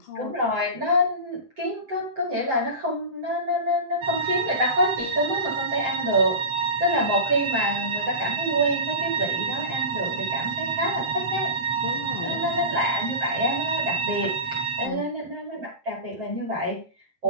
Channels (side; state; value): left; late; 7.6 ms